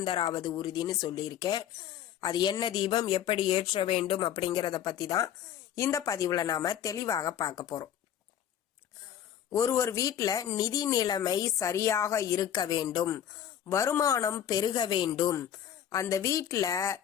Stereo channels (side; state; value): right; quieter; 10.0 dB